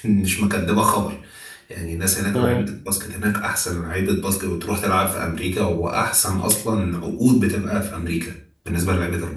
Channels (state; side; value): identical; both; correlation 1.00